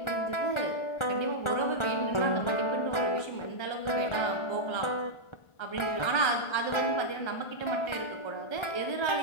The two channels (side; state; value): right; late; 1.4 ms